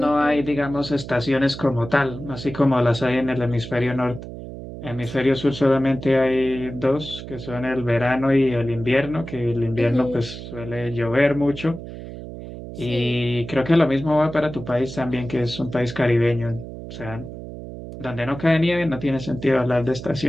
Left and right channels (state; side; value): noise; right; hum, 11 dB below the sound